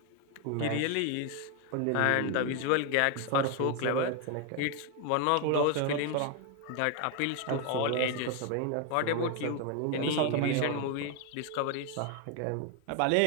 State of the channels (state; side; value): different; both; correlation 0.01